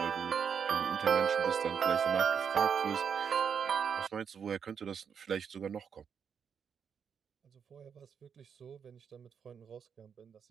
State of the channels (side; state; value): left; quieter; 7.1 dB